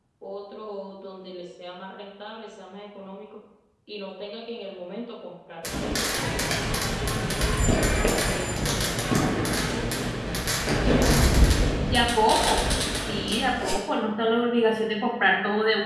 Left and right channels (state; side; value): identical; both; correlation 1.00